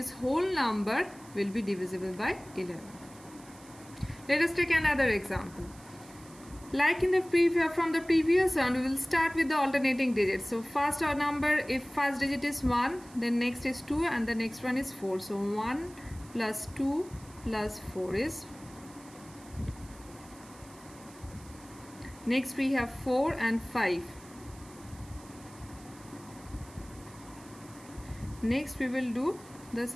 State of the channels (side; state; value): right; noise; hiss, 22 dB below the sound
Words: whole number will be divisible by 11. Let us take another example. Like in the from the previous one, we will start with the alternating digits. So first our number, if first digit is 1, then next is 2 and the next one is 4. So 1 plus 2 plus 4 is. Next we have 4 and 5. Next we will do the